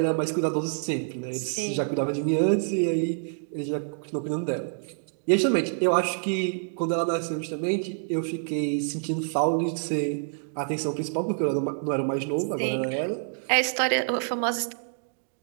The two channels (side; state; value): left; silent; digital silence